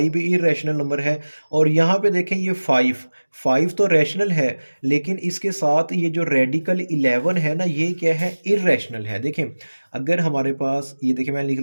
भी इरेशनल नंबर है। और यहाँ पे देखें ये 5, 5 तो रैशनल है, लेकिन इसके साथ ये जो रेडिकल 11 है ना ये क्या है, इरेशनल है। देखें अगर हमारे पास ये देखें मैंने लिख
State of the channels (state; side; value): inverted; both; correlation -1.00